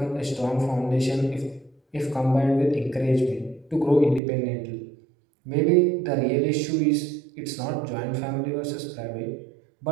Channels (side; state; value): left; drops out; at 4.2 s